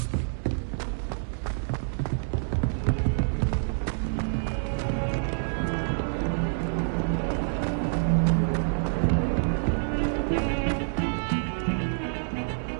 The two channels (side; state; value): left; silent; digital silence